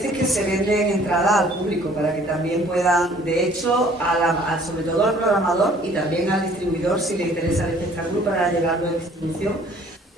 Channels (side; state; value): both; normal; correlation 0.55